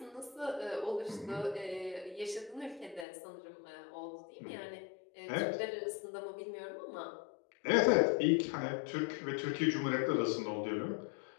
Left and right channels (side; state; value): right; drops out; at 3.1 s